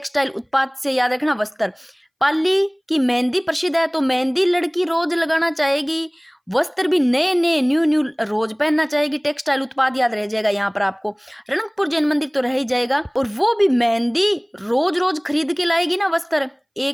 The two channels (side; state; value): both; identical; correlation 1.00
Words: उत्पाद से याद रखना वस्त्र। पाली की मेहंदी प्रसिद्ध है तो मेहंदी लड़की रोज लगाना चाहेगी, वस्त्र भी नए नए न्यू न्यू रोज पहनना चाहेगी, टेक्सटाइल उत्पाद याद रह जाएगा यहाँ पर आपको, रणकपुर जैन मंदिर तो रह ही जाएगा। और वो भी मेहंदी रोज रोज खरीद के लाएगी ना वस्त्र,